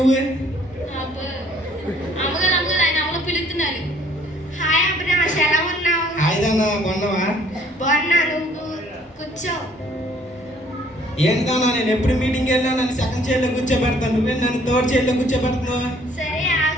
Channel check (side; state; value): both; normal; correlation 0.60